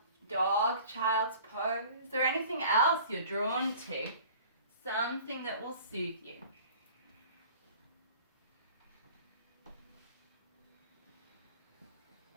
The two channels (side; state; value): both; inverted; correlation -0.47